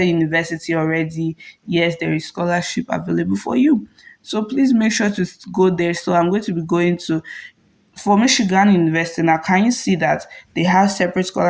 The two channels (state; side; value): identical; both; correlation 1.00